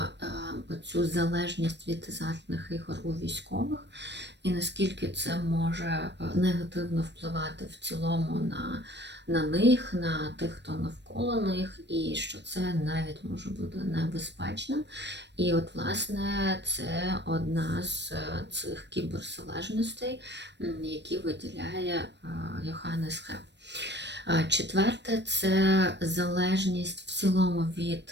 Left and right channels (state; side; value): late; left; 0.50 ms